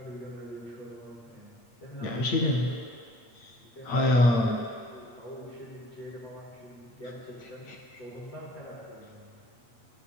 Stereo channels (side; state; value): right; late; 8.5 ms